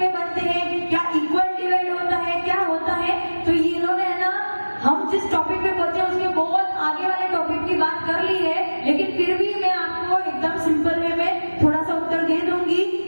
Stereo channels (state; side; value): inverted; both; correlation -1.00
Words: बनते हैं? क्या इक्वल डिवाइड होता है? क्या होता है? तो ये इन्होंने है ना, हम जिस टॉपिक पे बोलते हैं उसके बहुत आगे वाले टॉपिक की बात कर ली है, लेकिन फिर भी मैं आपको एकदम सिंपल वे में थोड़ा सा उत्तर दे दूंगी